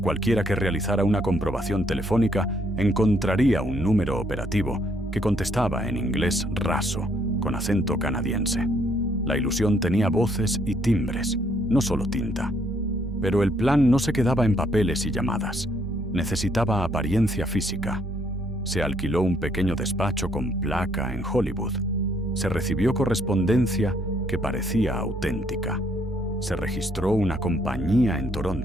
Cualquiera que realizara una comprobación telefónica encontraría un número operativo que contestaba en inglés raso, con acento canadiense. La ilusión tenía voces y timbres, no solo tinta. Pero el plan no se quedaba en papeles y llamadas. Necesitaba apariencia física. Se alquiló un pequeño despacho con placa en Hollywood. Se recibió correspondencia que parecía auténtica. Se registró una compañía en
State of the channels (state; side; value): normal; both; correlation 0.69